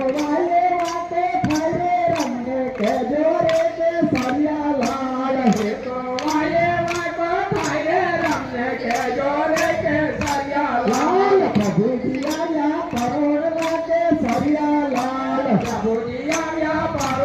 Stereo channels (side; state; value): both; identical; correlation 1.00